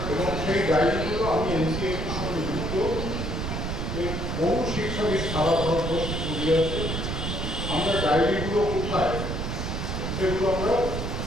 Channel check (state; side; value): noise; right; rumble, 3 dB below the sound